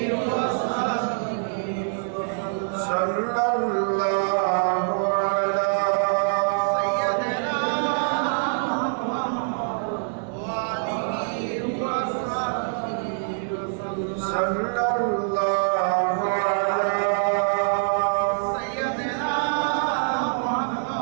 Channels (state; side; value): silent; left; digital silence